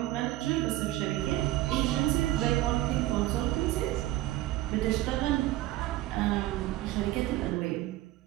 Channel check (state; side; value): quieter; left; 15.8 dB